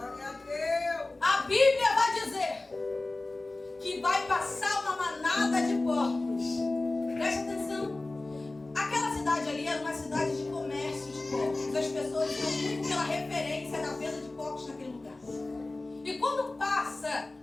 A Bíblia vai dizer que vai passar uma manada de porcos. Preste atenção. Aquela cidade ali era uma cidade de comércio de porcos. As pessoas iam muito pela referência da venda de porcos naquele lugar. E quando passa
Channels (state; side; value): quieter; right; 3.0 dB